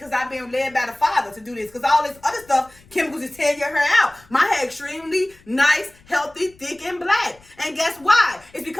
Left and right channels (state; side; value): noise; left; rumble, 28 dB below the sound